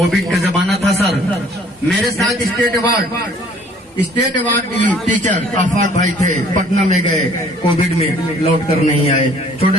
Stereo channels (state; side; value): normal; both; correlation 0.56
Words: का जमाना था सर, मेरे साथ स्टेट अवार्ड टीचर आफाक भाई थे, पटना में गए, कोविड में लौट कर नहीं आए,